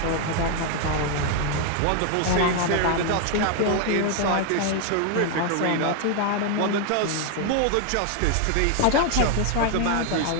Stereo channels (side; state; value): both; different; correlation 0.00